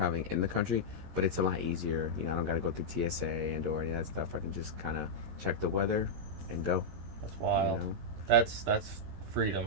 in the country, but it's a lot easier. I don't got to go through TSA and or any of that stuff. I can just kind of check the weather and go. That's wild. You know? That's freedom,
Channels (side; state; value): left; late; 13 ms